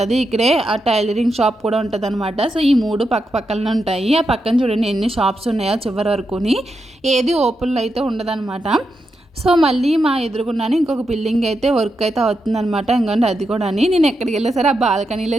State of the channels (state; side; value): normal; both; correlation 0.85